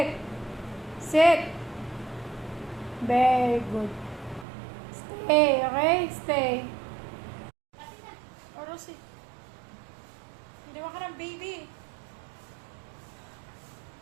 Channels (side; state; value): left; drops out; at 4.5 s